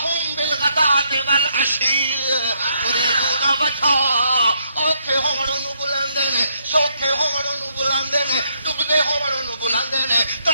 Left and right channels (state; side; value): inverted; both; correlation -0.74